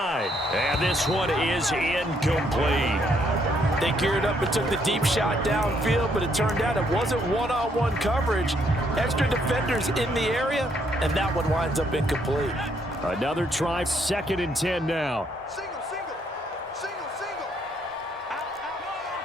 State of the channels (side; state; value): both; normal; correlation 0.71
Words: And this one is incomplete. They geared up and took the deep shot downfield, but it turned out it wasn't one-on-one coverage. Extra defenders in the area, and that one winds up incomplete. Another try, 2nd and 10 now. Single.